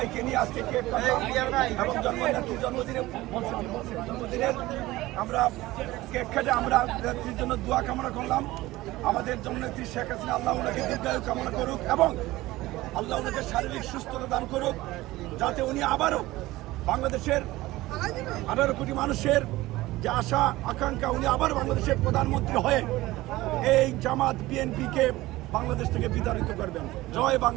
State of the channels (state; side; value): quieter; left; 18.2 dB